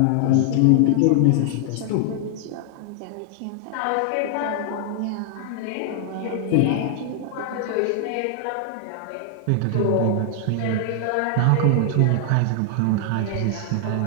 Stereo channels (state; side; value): different; both; correlation 0.00